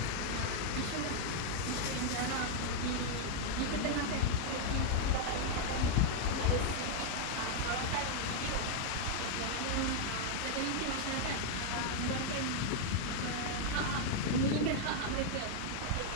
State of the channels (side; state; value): both; different; correlation 0.00